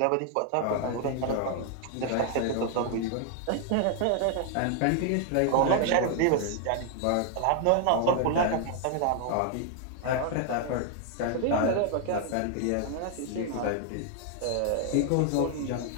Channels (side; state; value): both; different; correlation 0.00